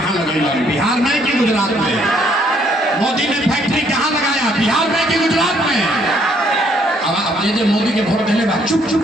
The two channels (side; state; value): both; normal; correlation 0.67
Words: लगेगा, बिहार में कि गुजरात में? मोदी ने फैक्ट्री कहाँ लगाया, बिहार में कि गुजरात में? अब ये मोदी के वोट देने बाद चुप